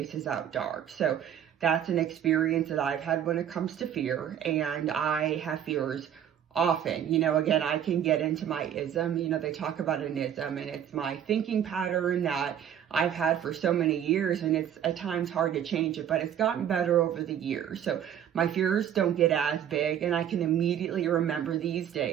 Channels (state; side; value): quieter; left; 9.7 dB